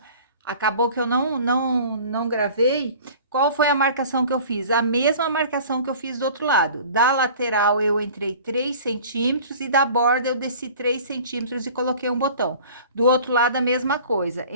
acabou que eu não gravei. Qual foi a marcação que eu fiz? A mesma marcação que eu fiz do outro lado. Da lateral eu entrei 3 centímetros e da borda eu desci 3 centímetros e coloquei um botão. Do outro lado a mesma coisa,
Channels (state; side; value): inverted; both; correlation -0.44